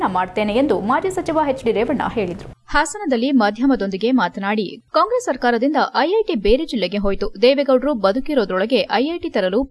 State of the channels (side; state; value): both; identical; correlation 1.00